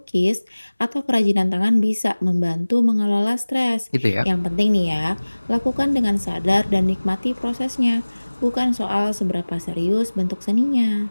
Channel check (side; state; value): both; inverted; correlation -1.00